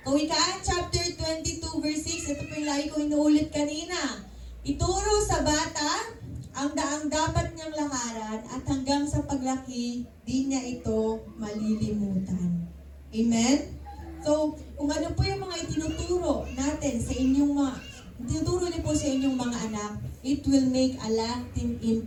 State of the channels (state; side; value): identical; both; correlation 1.00